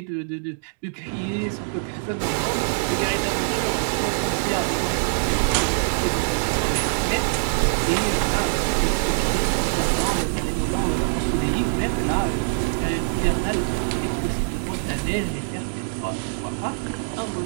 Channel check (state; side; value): silent; left; digital silence